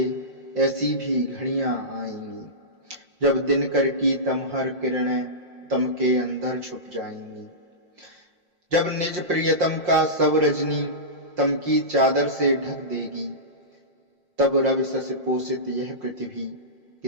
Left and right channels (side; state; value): left; late; 5.6 ms